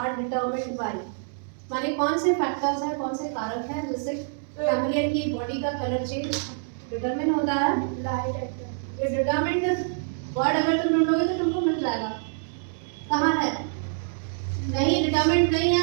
determined by. माने कौन से फैक्टर्स हैं, कौन से कारक हैं जिससे कैमलियन की बॉडी का कलर चेंज डिटरमिन होता है? Light. ये डिटरमिन्ड वर्ड अगर तुम ढूंढोगे तो तुमको मिल जाएगा। कहाँ है? नहीं, डिटरमिन्ड नहीं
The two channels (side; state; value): left; silent; digital silence